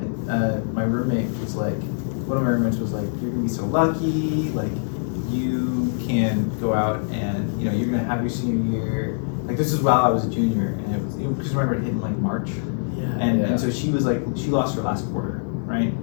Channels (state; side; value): silent; right; digital silence